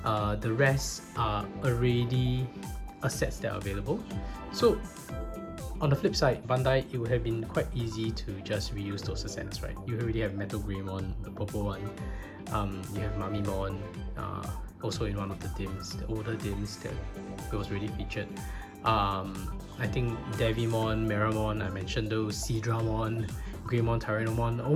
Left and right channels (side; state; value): both; identical; correlation 1.00